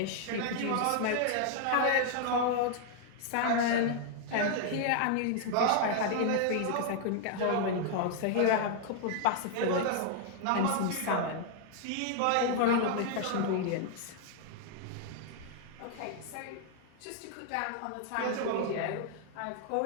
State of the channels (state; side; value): different; both; correlation 0.00